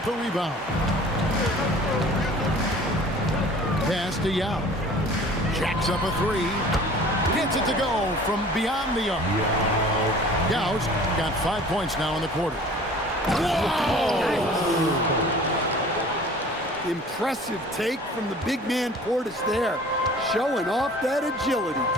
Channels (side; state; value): both; normal; correlation 0.47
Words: the rebound. Pass to Yao. Jacks up a three. Gets it to go from beyond the arc. Yao's got 5 points now in the quarter. Whoa! Impressive take from the big man Portis there, showing off that agility.